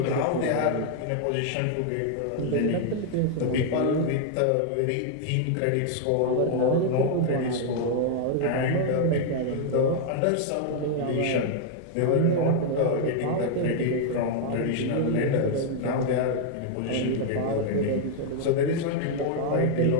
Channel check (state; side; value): different; both; correlation 0.00